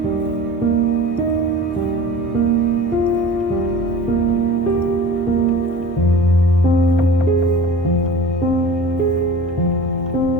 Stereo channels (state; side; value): normal; both; correlation 0.39